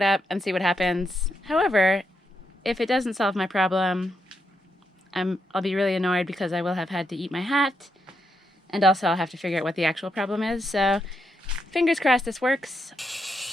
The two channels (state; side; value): normal; both; correlation 0.81